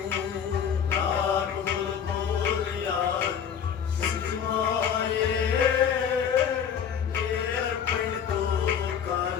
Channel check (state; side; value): quieter; right; 7.9 dB